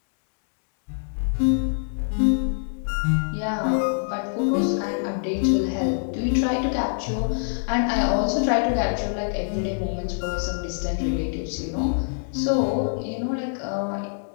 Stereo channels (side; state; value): right; silent; 62 dB below the other